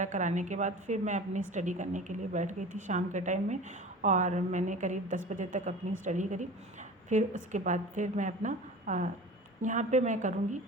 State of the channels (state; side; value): normal; both; correlation 0.37